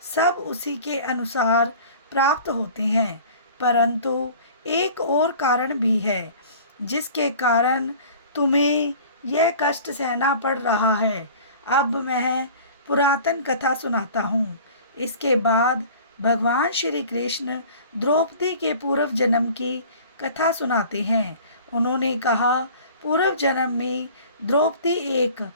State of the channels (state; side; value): inverted; both; correlation -0.44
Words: सब उसी के अनुसार प्राप्त होते हैं। परंतु एक और कारण भी है जिसके कारण तुम्हें यह कष्ट सहना पड़ रहा है। अब मैं पुरातन कथा सुनाता हूँ। इसके बाद भगवान श्री कृष्ण द्रौपदी के पूर्व जन्म की कथा सुनाते हैं। उन्होंने कहा, पूर्व जन्म में द्रौपदी एक